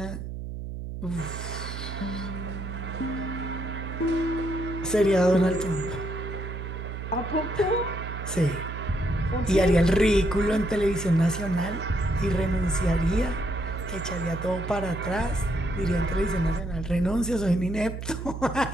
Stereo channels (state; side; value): noise; right; hum, 7 dB below the sound